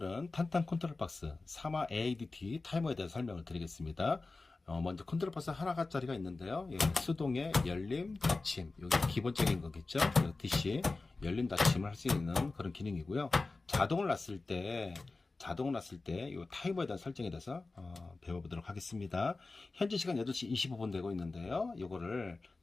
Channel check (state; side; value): quieter; right; 3.6 dB